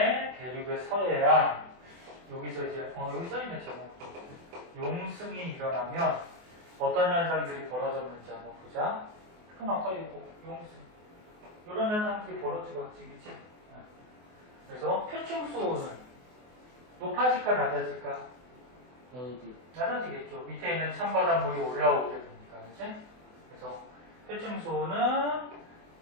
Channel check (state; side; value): late; left; 24 ms